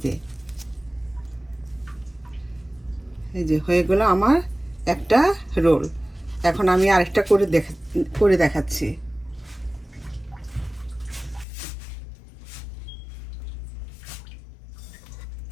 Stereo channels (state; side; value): drops out; right; at 11.5 s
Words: যে হয়ে গেল আমার একটা রোল। এখন আমি আরেকটা করে দেখাচ্ছি।